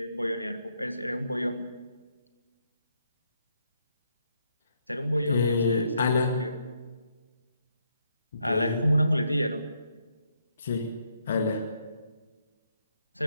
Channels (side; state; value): both; inverted; correlation -0.75